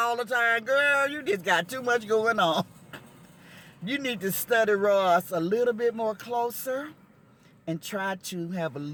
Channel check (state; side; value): identical; both; correlation 1.00